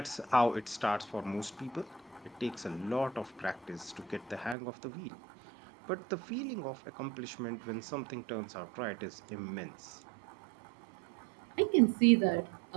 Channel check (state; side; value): drops out; left; at 4.5 s